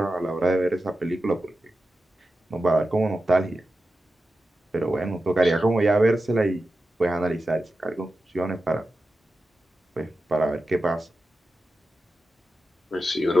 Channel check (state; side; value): normal; both; correlation 0.92